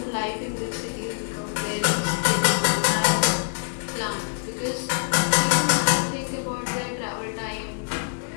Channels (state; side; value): silent; right; 62 dB below the other